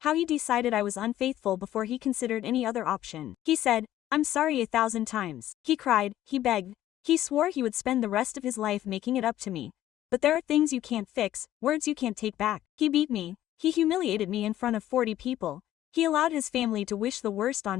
how he decided I was unfaithful before he considered any other option. He said, "I'm sorry 1,000 times. He cried, he begged, he swore he would spend the rest of his life making it up to me. But there are things you can't fix, words you can't take back. He beat me, he humiliated me in front of 40 people, he allowed his family to wish the worst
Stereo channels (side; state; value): right; quieter; 13.0 dB